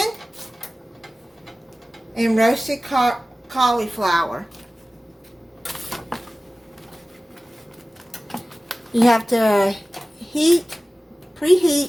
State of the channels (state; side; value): normal; both; correlation 0.97